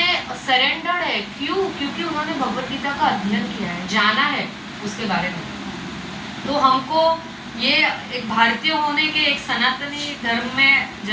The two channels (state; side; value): identical; both; correlation 1.00